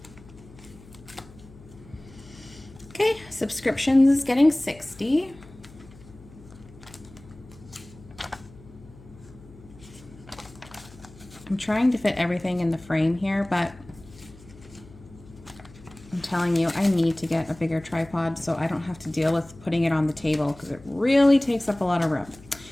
Okay, subscriptions is getting 60. I'm trying to fit everything in the frame here, but I'm telling you, I need to get a bigger tripod so I don't have to deal with putting it on the table because it really takes up a lot of room.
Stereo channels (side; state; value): left; noise; hum, 21 dB below the sound